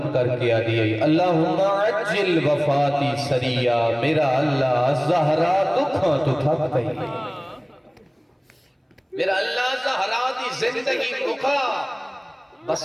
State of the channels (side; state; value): both; identical; correlation 1.00